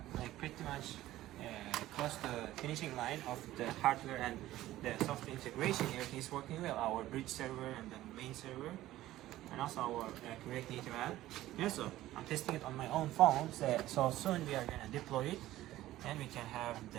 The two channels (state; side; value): quieter; left; 15.2 dB